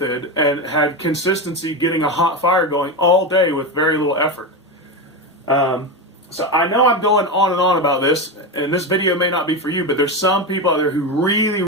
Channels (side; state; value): both; normal; correlation 0.16